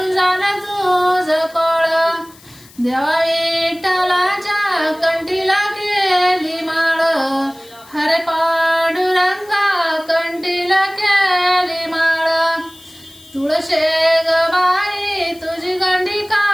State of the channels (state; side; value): noise; left; hiss, 24 dB below the sound